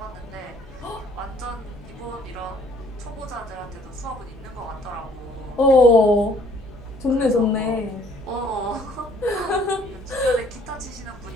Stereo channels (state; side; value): normal; both; correlation 0.60